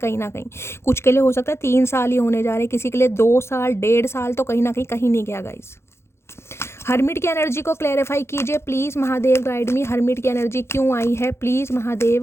ना कहीं कुछ के लिए हो सकता है 3 साल ही होने जा रहे, किसी के लिए 2 साल 1.5 साल, तो कहीं ना कहीं नहीं गया गाइस। हर्मिट की एनर्जी को क्लैरिफाई कीजिए please Mahadev guide me. Hermit की एनर्जी क्यों आई है, please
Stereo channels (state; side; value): late; right; 0.13 ms